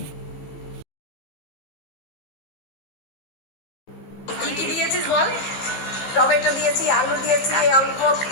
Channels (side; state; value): right; late; 15 ms